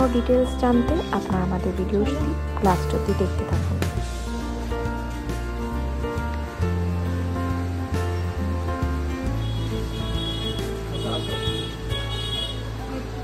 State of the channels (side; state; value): both; identical; correlation 1.00